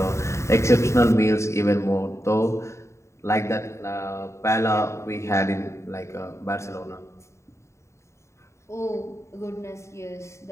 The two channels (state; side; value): late; right; 0.14 ms